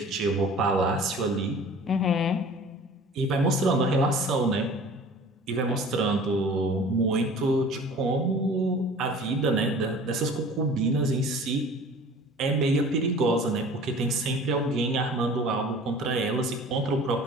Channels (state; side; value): normal; both; correlation 0.45